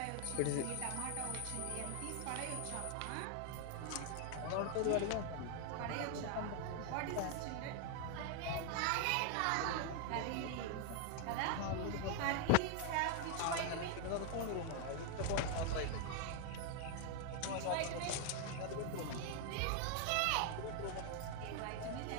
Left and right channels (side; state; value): both; different; correlation 0.00